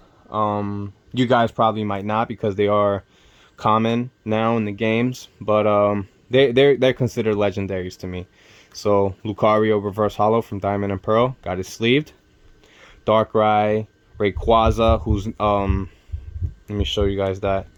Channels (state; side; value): identical; both; correlation 1.00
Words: You guys probably might not because they are common now in the games, but they're considered legendaries to me. So Lucario reverse holo from Diamond and Pearl, got it sleeved. Darkrai, Rayquaza, who's let me show you guys that.